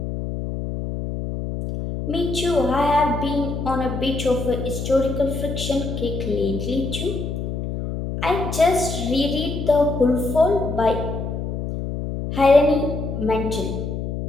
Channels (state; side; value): noise; left; hum, 4 dB below the sound